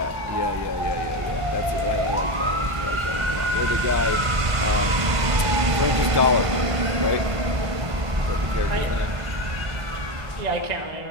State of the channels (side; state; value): left; late; 1.5 ms